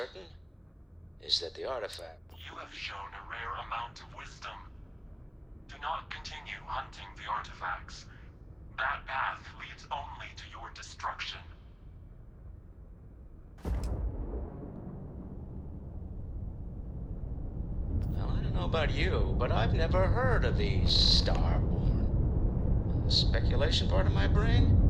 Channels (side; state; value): both; identical; correlation 1.00